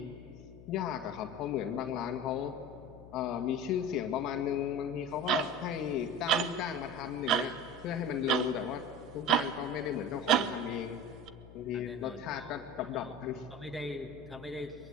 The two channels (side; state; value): left; noise; hum, 17 dB below the sound